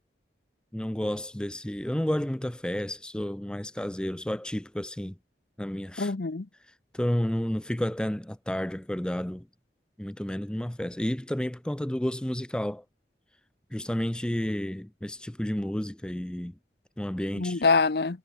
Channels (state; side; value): normal; both; correlation 0.57